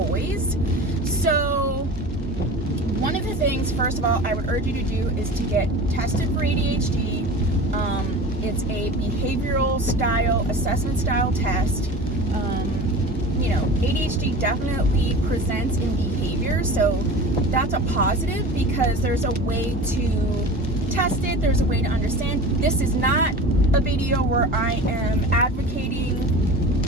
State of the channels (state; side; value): normal; both; correlation 0.35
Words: So one of the things, first of all, I would urge you to do is to get tested for ADHD. It's a behavioral style, assessment style test. ADHD definitely presents in behavior, so that's a positive because there's a way to test it, there's a way to understand. This is not a video where I am advocating